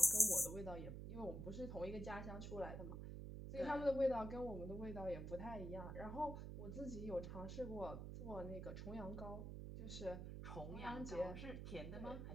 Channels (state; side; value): noise; right; hum, 6 dB below the sound